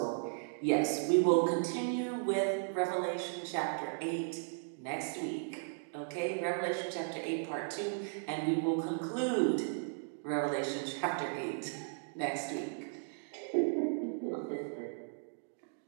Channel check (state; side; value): silent; left; digital silence